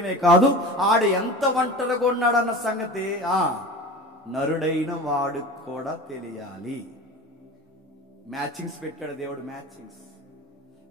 కాదు, ఆడు ఎంత ఒంటరిగా ఉన్నాడన్న సంగతి నరుడైన వాడు కూడా తెలియాలి. మ్యాచింగ్స్ పెట్టాడు దేవుడు.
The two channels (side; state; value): both; normal; correlation 0.34